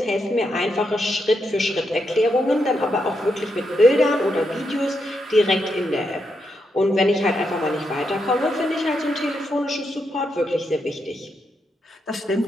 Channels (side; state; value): both; normal; correlation 0.82